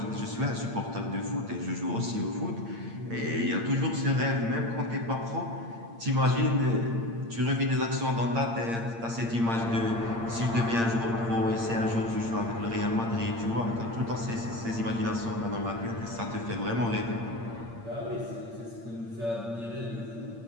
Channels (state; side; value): late; left; 8.7 ms